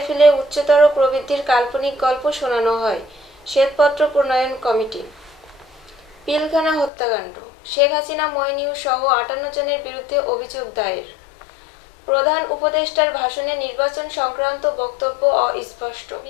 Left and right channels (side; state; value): right; drops out; at 6.9 s